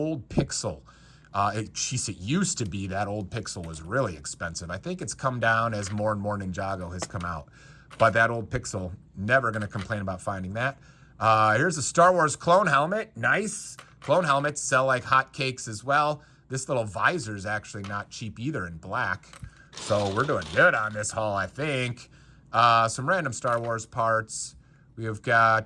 Pixel. It used to be that old Pixel was really expensive. I think it's come down as more and more Ninjago has come out. But that old Pixel, never going to complain about finding that. Here's a Star Wars clone helmet. Nice. Clone helmets sell like hotcakes as well. This little visor is actually not cheap either in black. So we're doing good on this haul, I think. Some random Star Wars parts. We have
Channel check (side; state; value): both; identical; correlation 1.00